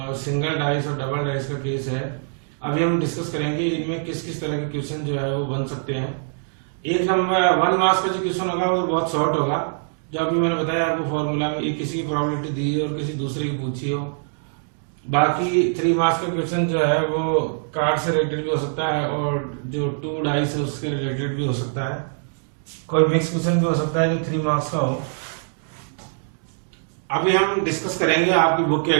सिंगल डाइस और डबल डाइस का केस है। अभी हम डिस्कस करेंगे इनमें किस किस तरह के क्वेश्चन जो है वो बन सकते हैं। एक नंबर 1 मार्क्स का जो क्वेश्चन होगा वो बहुत शॉर्ट होगा, जो अभी मैंने बताया आपको फॉर्मूला में, एक किसी की प्रोबेबिलिटी दी और किसी दूसरे की पूछी हो। बाकी 3 मार्क्स का क्वेश्चन जो है वो कार्ड से रिलेटेड भी हो सकता है और जो 2 डाइस है उसके रिलेटेड भी हो सकता है। कोई मिक्स क्वेश्चन भी हो सकता है जो 3 मार्क्स का हो। अभी हम डिस्कस करेंगे आपकी बुक के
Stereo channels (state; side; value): silent; left; digital silence